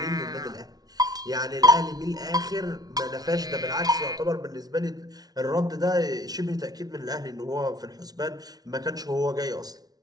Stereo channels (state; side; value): late; left; 0.19 ms